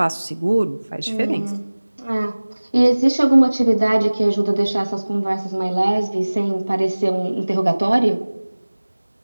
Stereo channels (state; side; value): inverted; both; correlation -1.00